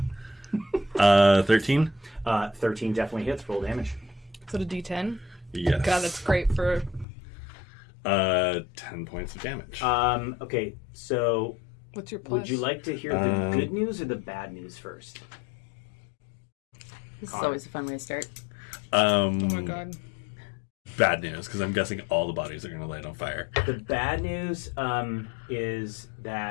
Yeah. 13? 13 definitely hits. Roll damage. Is it a D10? Yes. God, that's great for... 10 points of damage. Okay, so What's your plus? would you like to hear the good news or the bad news first? This is always a fun way to start. Oh my god. Bad news, because I'm guessing all the bodies are going to light on fire. The bad news is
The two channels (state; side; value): drops out; right; at 7.1 s